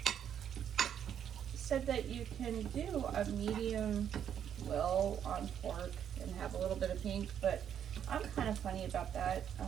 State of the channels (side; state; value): left; quieter; 9.1 dB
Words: said that you can do a medium well on pork and have a little bit of pink, but I'm kind of funny about that